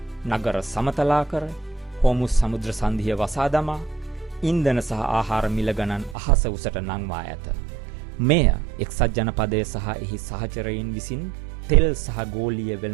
නගර සමතලා කර, හෝමුස් සමුද්‍ර සන්ධිය වසා දමා, ඉන්ධන සහ ආහාර මිල ගණන් අහස උසට නංවා ඇත. මෙය එක්සත් ජනපදය සහ එහි සහචරයින් විසින් තෙල් සහ ගෝලීය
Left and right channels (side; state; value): left; drops out; at 6.2 s